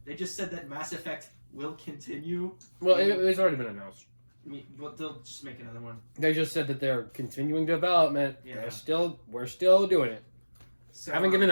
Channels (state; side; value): inverted; both; correlation -1.00